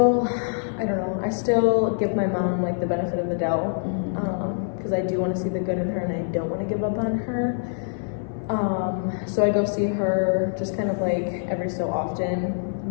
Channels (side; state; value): right; silent; 59 dB below the other